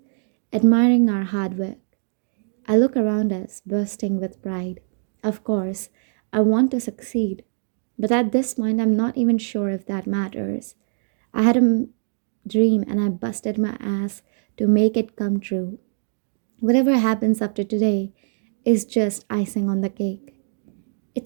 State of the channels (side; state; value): left; silent; digital silence